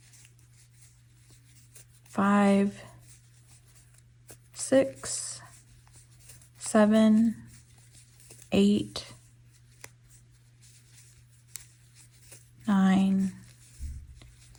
5, 6, 7, 8, 9,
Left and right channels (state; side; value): identical; both; correlation 1.00